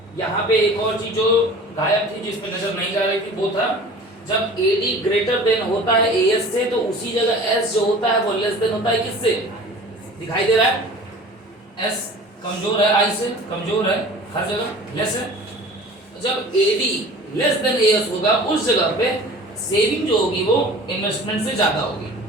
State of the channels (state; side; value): normal; both; correlation 0.42